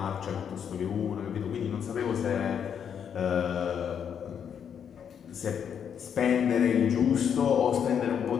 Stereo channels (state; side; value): quieter; right; 8.0 dB